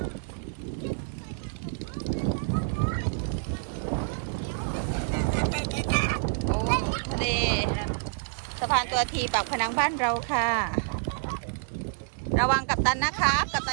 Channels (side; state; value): left; silent; digital silence